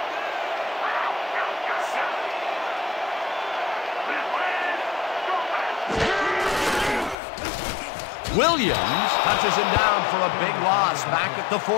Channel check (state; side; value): drops out; right; at 7.2 s